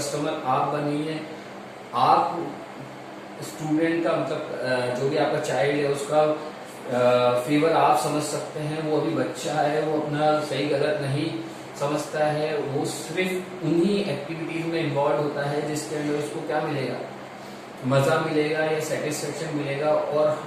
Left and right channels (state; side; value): identical; both; correlation 1.00